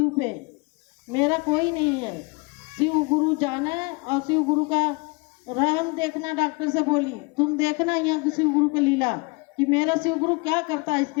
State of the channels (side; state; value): right; quieter; 29.0 dB